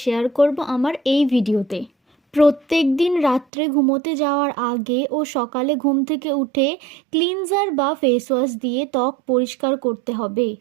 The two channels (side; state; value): left; drops out; at 3.5 s